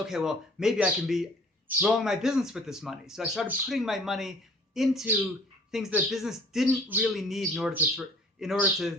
well, maybe I can be growing my business with this money. So I started putting my money into things that business didn't really need in order to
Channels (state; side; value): normal; both; correlation 0.51